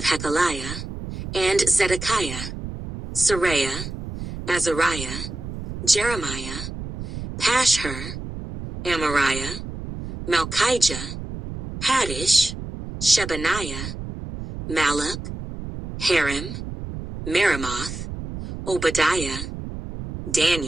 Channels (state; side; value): noise; right; rumble, 8 dB below the sound